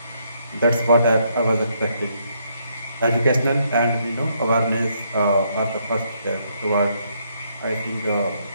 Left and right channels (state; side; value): inverted; both; correlation -0.73